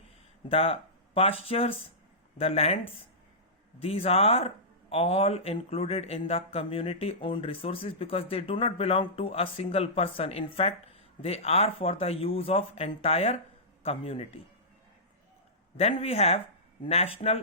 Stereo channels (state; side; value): normal; both; correlation -0.16